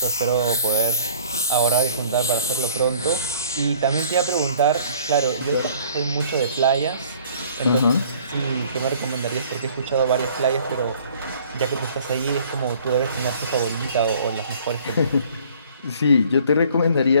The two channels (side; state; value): both; inverted; correlation -0.54